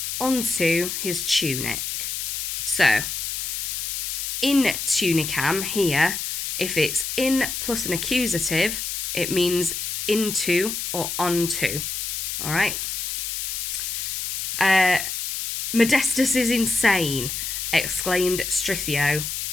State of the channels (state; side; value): noise; left; hiss, 3 dB below the sound